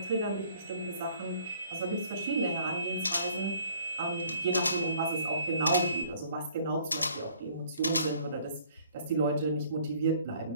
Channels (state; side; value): inverted; both; correlation -0.59